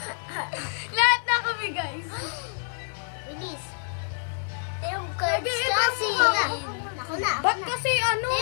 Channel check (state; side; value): silent; right; digital silence